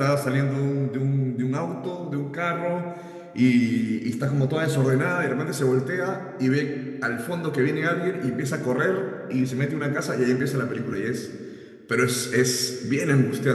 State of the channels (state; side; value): identical; both; correlation 1.00